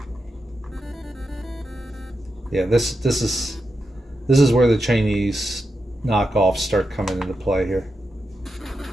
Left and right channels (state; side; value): normal; both; correlation 0.87